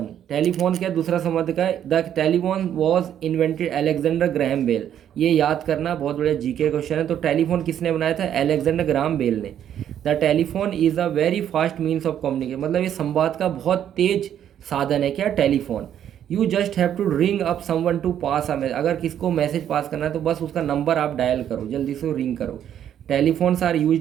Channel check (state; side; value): quieter; left; 10.0 dB